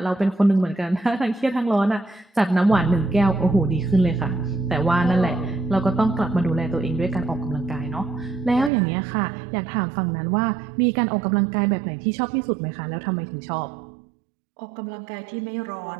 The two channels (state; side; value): drops out; left; at 8.7 s